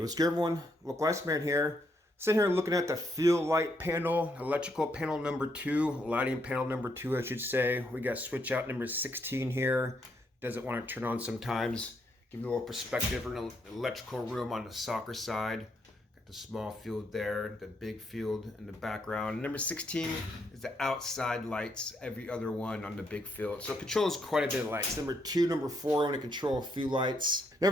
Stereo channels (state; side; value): normal; both; correlation 0.75